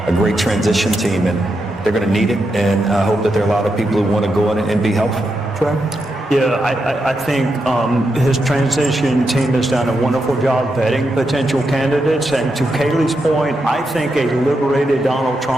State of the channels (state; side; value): normal; both; correlation 0.85